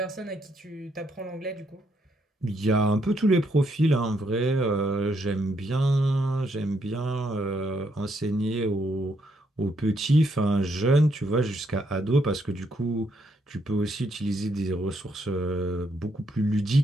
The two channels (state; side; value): normal; both; correlation 0.75